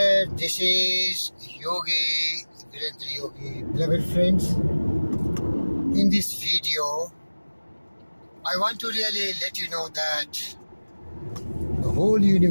this is Yogi, Virendra Yogi. Beloved friends, in this video, I want to really let you know that the whole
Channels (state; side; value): inverted; both; correlation -1.00